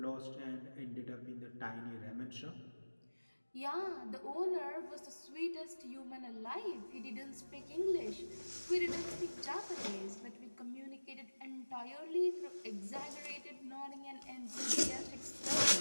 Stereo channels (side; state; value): both; inverted; correlation -1.00